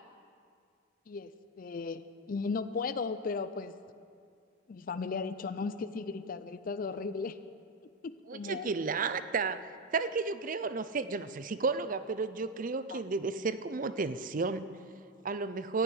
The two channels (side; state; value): both; normal; correlation 0.10